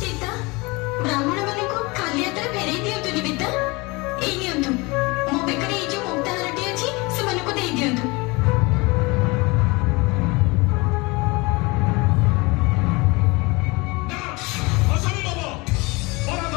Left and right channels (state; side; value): quieter; right; 25.3 dB